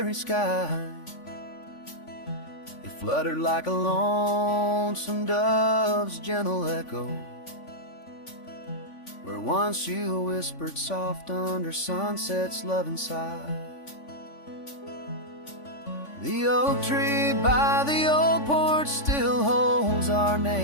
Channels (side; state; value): right; late; 3.5 ms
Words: sky. It fluttered like a lonesome dove's gentle echo, where once you whispered soft under sunset's loving sigh. The oak tree by the old porch still holds our